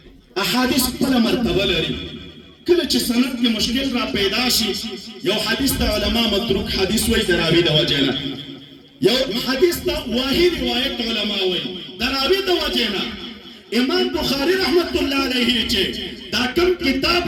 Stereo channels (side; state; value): both; identical; correlation 1.00